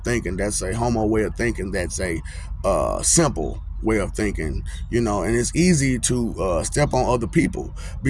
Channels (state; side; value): identical; both; correlation 1.00